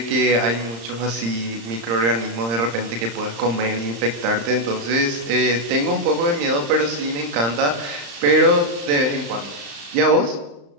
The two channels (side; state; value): left; late; 35 ms